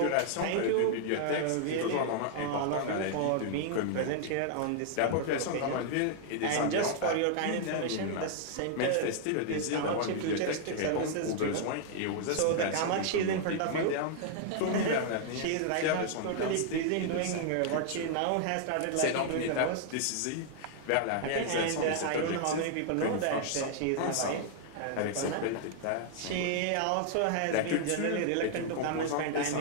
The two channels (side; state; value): both; different; correlation 0.00